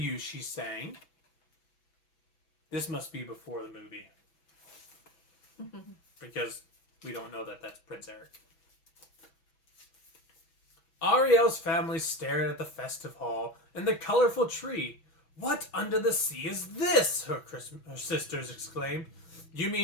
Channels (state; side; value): late; right; 6.0 ms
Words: she sang. This must be before the movie. Because we don't know that that's Prince Eric. Ariel's family stared at the festive hall and the colorful tree. What under the sea is this? Her sisters exclaimed. You